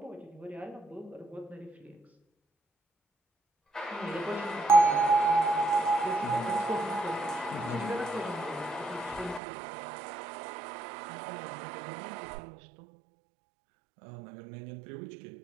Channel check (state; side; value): drops out; left; at 9.4 s